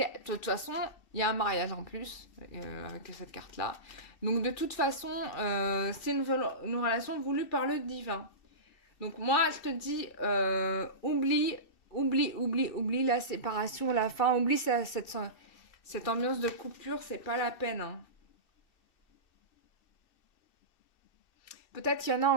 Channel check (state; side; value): late; right; 2.6 ms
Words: De toute façon, il y a un mariage en plus avec cette carte-là. Donc de toute façon, c'est une relation voulue par le divin. Donc moi, je te dis, oublie la séparation, la fin, oublie cette ambiance de coupure, c'est pas la peine, hein. Peut-être qu'il y en a